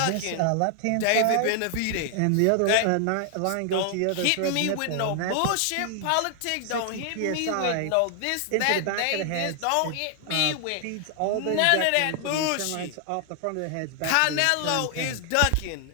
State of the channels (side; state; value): both; different; correlation 0.00